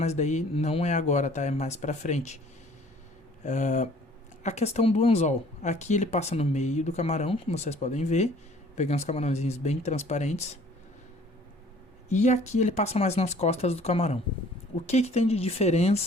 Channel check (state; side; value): normal; both; correlation 0.54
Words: daí não é agora, tá? É mais pra frente. A questão do anzol. Aqui ele passa no meio do camarão, como vocês podem ver. Peguei uns camarãozinhos bem transparentes. E aqui ele passa mais nas costas do camarão. O que tem de